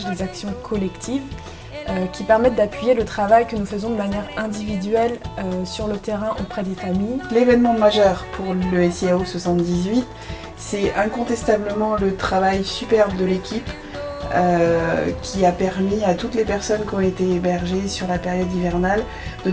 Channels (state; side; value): identical; both; correlation 1.00